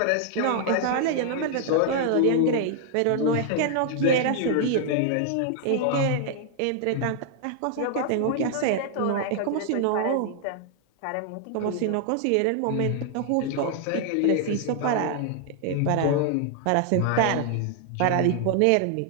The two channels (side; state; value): both; different; correlation 0.00